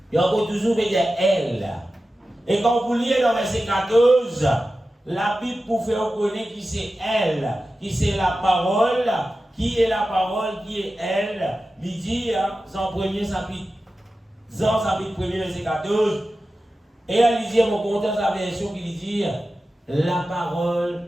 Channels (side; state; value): both; normal; correlation 0.93